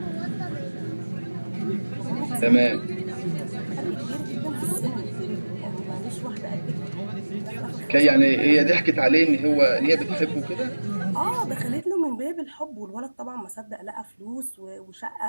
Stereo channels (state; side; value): inverted; both; correlation -1.00